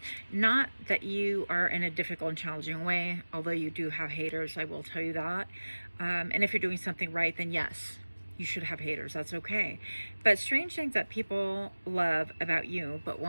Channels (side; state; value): both; inverted; correlation -1.00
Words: not that you are in a difficult and challenging way, although you do have haters, I will tell you that. And if you're doing something right, then yes, you should have haters. That's okay. But strange things that people love about you but